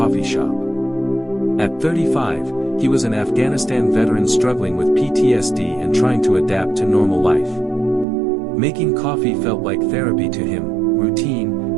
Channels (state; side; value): drops out; left; at 8.1 s